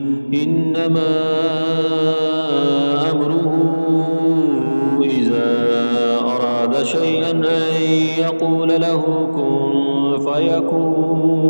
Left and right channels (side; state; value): both; inverted; correlation -1.00